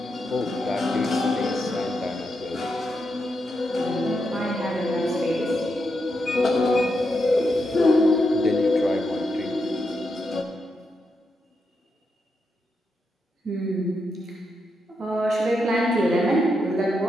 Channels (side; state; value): both; normal; correlation 0.84